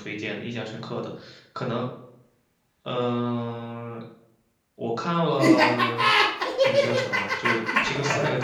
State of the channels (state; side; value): identical; both; correlation 1.00